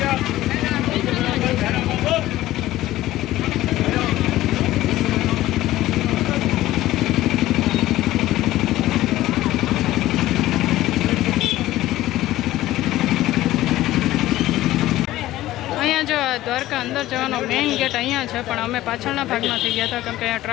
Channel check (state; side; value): quieter; right; 15.6 dB